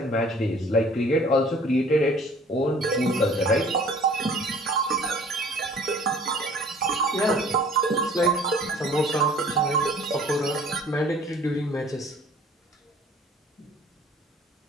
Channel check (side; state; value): both; normal; correlation 0.51